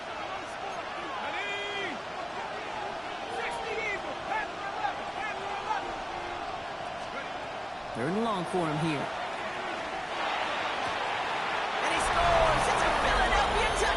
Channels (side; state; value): both; identical; correlation 1.00